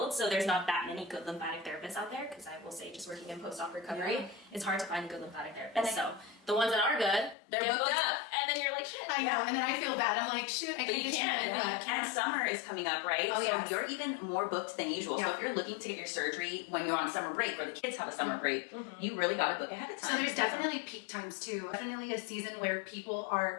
so there's not that many good lymphatic therapists out there, because I will say just working in post-op recovery, it's hard to find a good lymphatic therapist. So the ones that are good, They're get booked up. and then you're like, shit. I know, and then I feel bad. I'm like, shit, I But can't you do can't. it. And summer is coming up, right? Oh, so yes. you're even more booked than usual. So Yeah. if you're looking to get your surgery when you're on summer break or the kids have a summer break, you really got to book ahead of time. So there's definitely peak times too. Definitely a season where people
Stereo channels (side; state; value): right; drops out; at 7.4 s